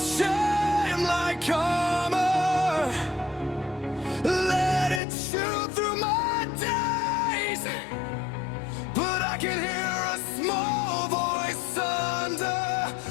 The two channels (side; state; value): right; drops out; at 5.0 s